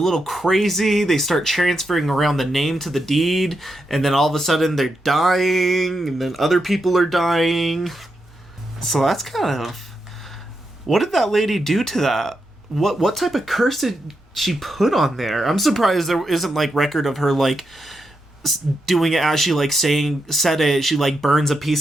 crazy. They start transferring around the name to the deed, and then all of a sudden they're dying, and then other people are dying. So that's kind of... What did that lady do to that? What type of curse did she put on there? I'm surprised there isn't, like, record of her, like, doing it as she, like, said it. She, like, burns a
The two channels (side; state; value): both; normal; correlation 0.85